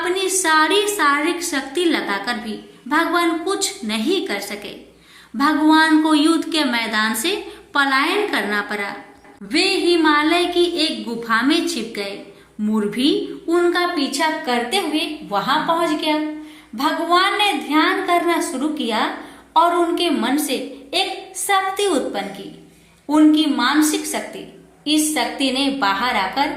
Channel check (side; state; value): both; identical; correlation 1.00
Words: सारी शारीरिक शक्ति लगाकर भी भगवान कुछ नहीं कर सके। भगवान को युद्ध के मैदान से पलायन करना पड़ा। वे हिमालय की एक गुफा में छिप गए। मोर भी उनका पीछा करते हुए वहां पहुंच गया। भगवान ने ध्यान करना शुरू किया और उनके मन से एक शक्ति उत्पन्न की, उनकी मानसिक शक्ति। इस शक्ति ने बाहर आकर